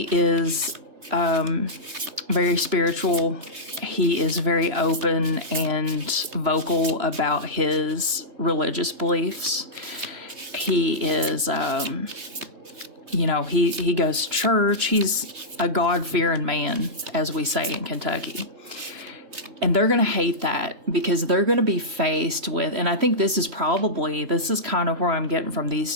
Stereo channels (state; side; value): late; left; 3.0 ms